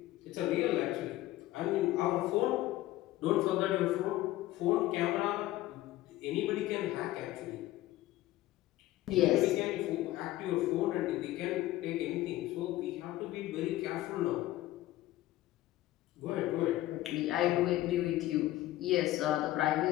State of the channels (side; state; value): right; quieter; 15.8 dB